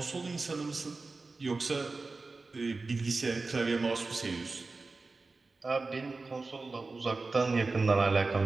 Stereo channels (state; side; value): quieter; left; 3.7 dB